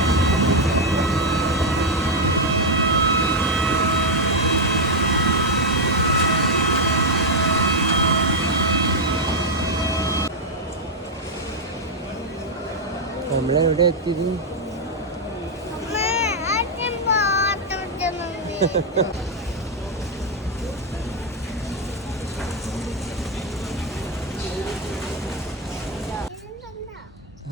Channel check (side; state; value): both; normal; correlation 0.01